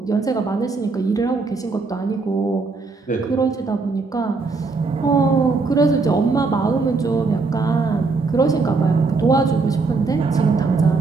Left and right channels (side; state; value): left; quieter; 4.1 dB